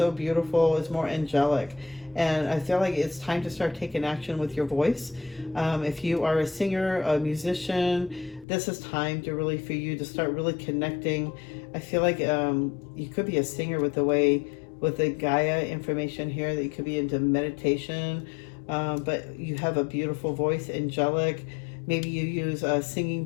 beautiful, it's more angelic. And I feel like it's time to start taking action with your voice. If you are a singer, a musician, this is time to really, for you to start really connecting. I feel like you could be a singer with the Gaia information here, that you could be into meditation, but you have a beautiful voice, angelic. Maybe you use singing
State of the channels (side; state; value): right; drops out; at 8.5 s